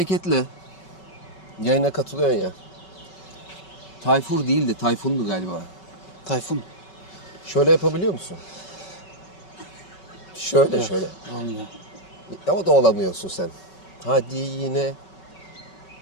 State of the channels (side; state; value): right; late; 5.3 ms